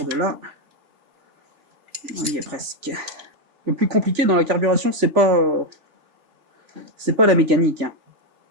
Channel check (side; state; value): left; late; 3.4 ms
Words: de là. On y est presque. Le plus compliqué dans la carburation, c'est pas la mécanique, hein.